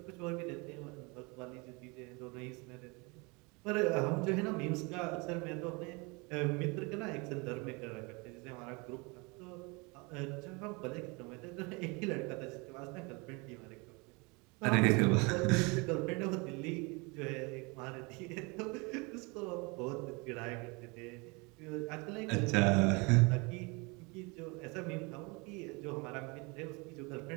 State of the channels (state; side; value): quieter; left; 28.3 dB